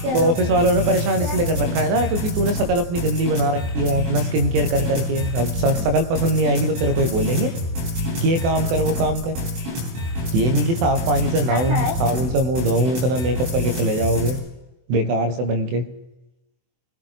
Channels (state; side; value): late; left; 24 ms